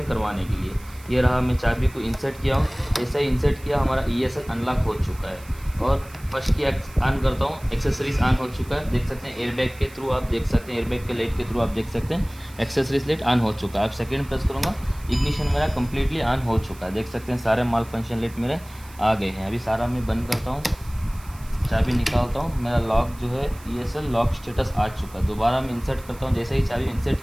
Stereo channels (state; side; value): noise; right; hiss, 22 dB below the sound